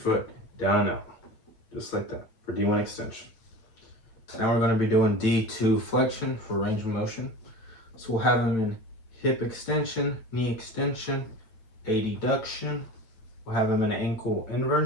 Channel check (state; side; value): late; right; 8.7 ms